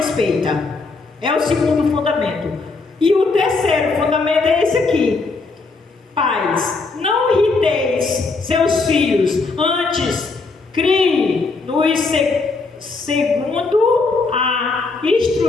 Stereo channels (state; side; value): quieter; right; 3.9 dB